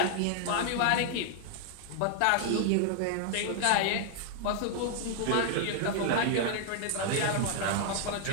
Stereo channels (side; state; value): both; different; correlation 0.00